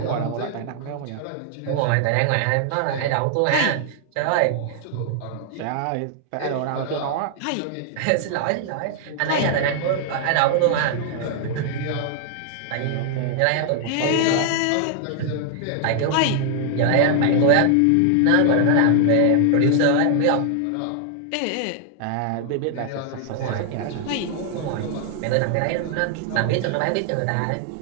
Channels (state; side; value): different; both; correlation 0.00